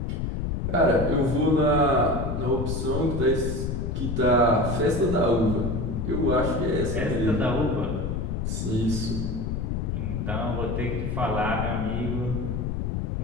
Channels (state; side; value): noise; left; rumble, 2 dB below the sound